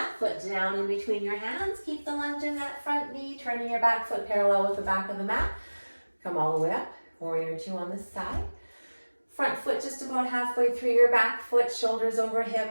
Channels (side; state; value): both; inverted; correlation -1.00